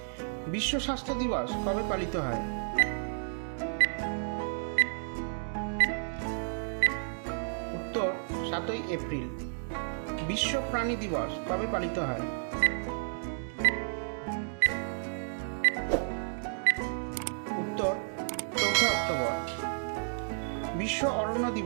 বিশ্ব স্বাস্থ্য দিবস কবে পালিত হয়? উত্তর 7ই এপ্রিল। বিশ্ব প্রাণী দিবস কবে পালিত হয়? উত্তর 4 অক্টোবর। বিশ্ব অরণ্য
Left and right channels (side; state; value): left; silent; digital silence